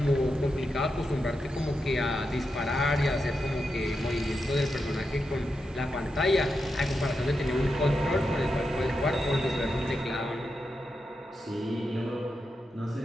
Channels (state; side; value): normal; both; correlation 0.87